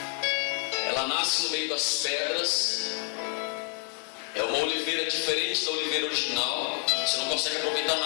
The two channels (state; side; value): quieter; right; 36.7 dB